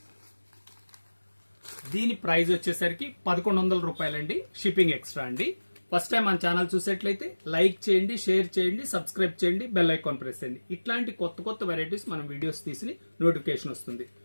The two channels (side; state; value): both; inverted; correlation -1.00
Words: దీని ప్రైస్ వచ్చేసరికి 1100 రూపాయలండి. షిప్పింగ్ ఎక్స్ట్రా అండి. ఫస్ట్ టైం మన ఛానల్ చూసేట్లయితే లైక్ చేయండి, షేర్ చేయండి, సబ్స్క్రైబ్ చేయండి, బెల్ ఐకాన్ ప్రెస్ చేయండి. ఇట్లాంటి కొత్త కొత్త వెరైటీస్ మనం వీడియోస్ తీసి నోటిఫికేషన్ వస్తుంది.